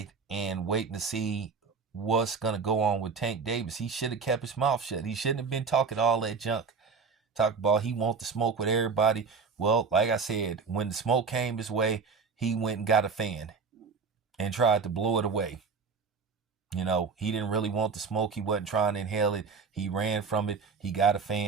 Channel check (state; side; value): quieter; left; 5.1 dB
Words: and waiting to see what's going to go on with Tank Davis. He should have kept his mouth shut. He shouldn't have been talking all that junk. Talk about he want to smoke with everybody. Well, like I said, when the smoke came his way, he went and got a fan and tried to blow it away. He didn't really want the smoke. He wasn't trying to inhale it. He ran from it. He got a